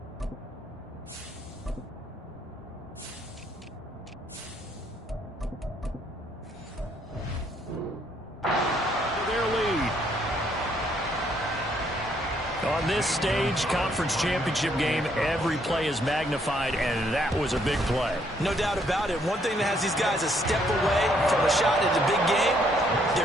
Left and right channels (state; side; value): normal; both; correlation 0.69